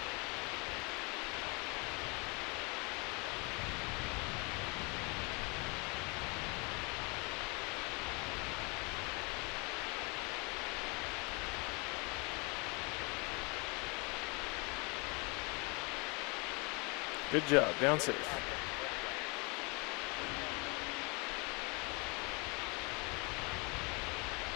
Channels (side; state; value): right; quieter; 30.0 dB